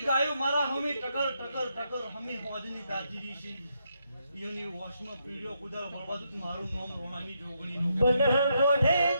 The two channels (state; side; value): inverted; both; correlation -0.79